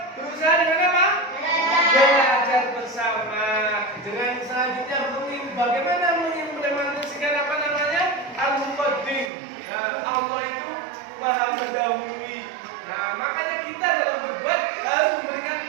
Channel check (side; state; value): left; drops out; at 9.3 s